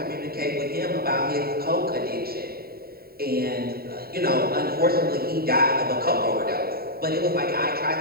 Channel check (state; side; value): late; left; 0.45 ms